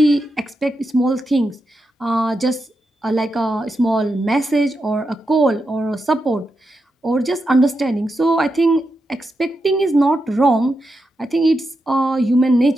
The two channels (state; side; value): normal; both; correlation 0.86